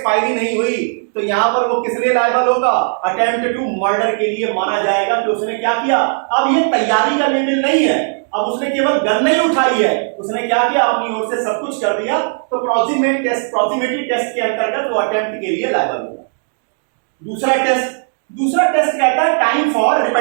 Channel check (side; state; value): left; silent; 66 dB below the other